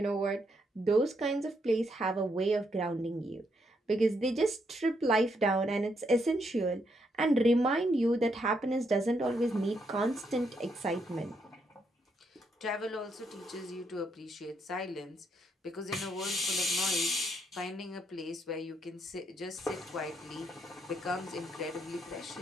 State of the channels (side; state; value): both; normal; correlation 0.76